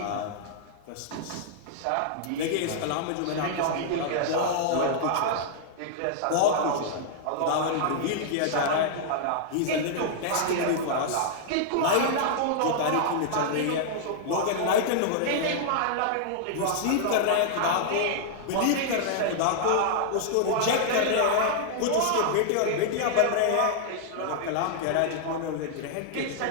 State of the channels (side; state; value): both; different; correlation -0.01